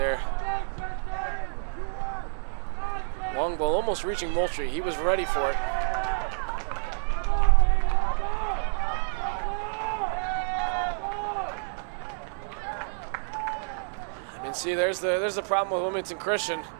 Long ball almost reaching Moultrie. He was ready for it. I mean, see, there's the problem with Wilmington Christian.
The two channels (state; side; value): silent; left; digital silence